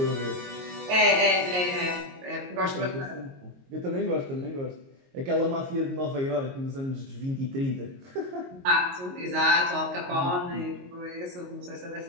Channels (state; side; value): late; left; 22 ms